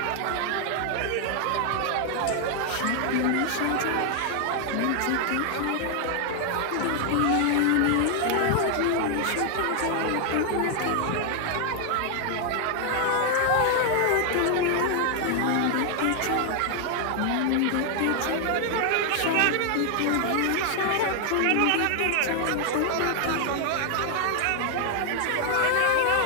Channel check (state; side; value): different; both; correlation 0.00